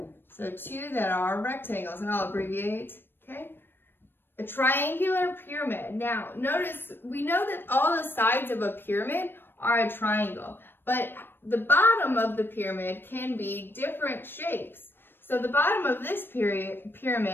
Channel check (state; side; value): late; right; 0.098 ms